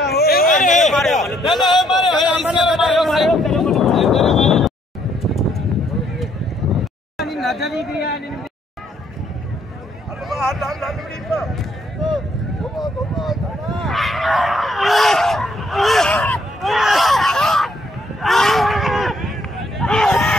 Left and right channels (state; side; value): normal; both; correlation 0.69